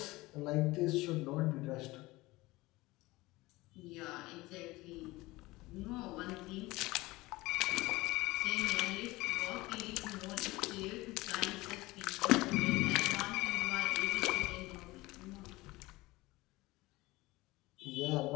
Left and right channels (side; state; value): right; quieter; 20.4 dB